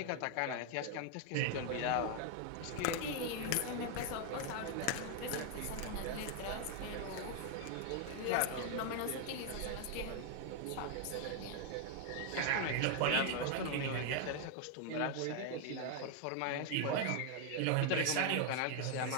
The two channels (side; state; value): both; different; correlation 0.00